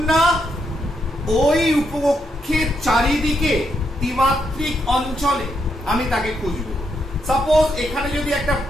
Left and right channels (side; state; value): both; normal; correlation 0.79